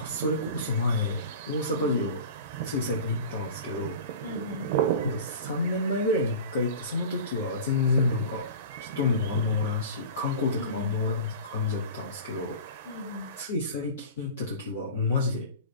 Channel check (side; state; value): both; inverted; correlation -0.35